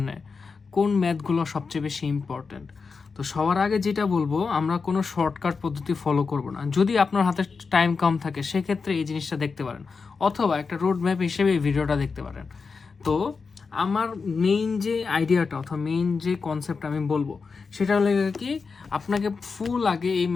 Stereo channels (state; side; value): quieter; right; 4.9 dB